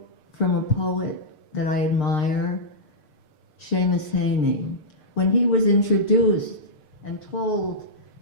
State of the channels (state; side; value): late; right; 6.6 ms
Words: from a poet that I admire, Seamus Heaney. When he was introduced and told